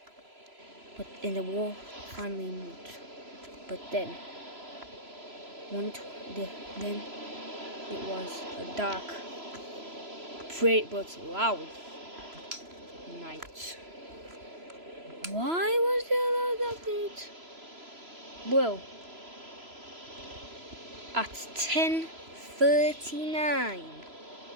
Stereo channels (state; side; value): late; left; 3.0 ms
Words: and the wall finally moved. But then it was a dark, but loud night. Why was there a loud night? Well, at 10:39,